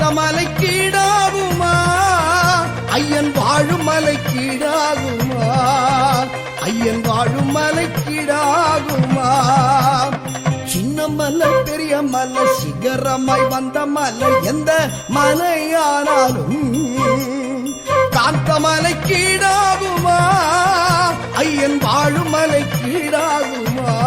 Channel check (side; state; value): both; identical; correlation 1.00